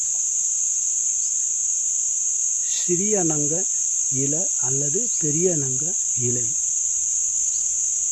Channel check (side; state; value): both; identical; correlation 1.00